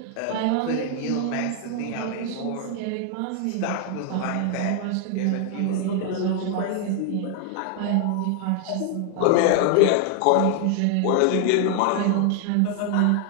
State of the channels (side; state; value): both; different; correlation 0.00